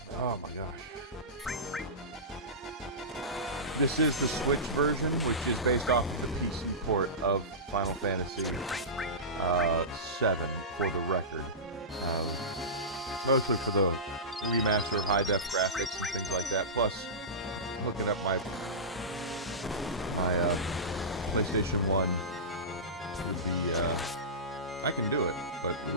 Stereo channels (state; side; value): normal; both; correlation -0.18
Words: Oh my gosh. This is the Switch version, which is based off of the PC port of Final Fantasy VII, for the record. Mostly for the remaster, high-def graphics and things like that, plus hooking up my PlayStation 1 would be, I can do it, but it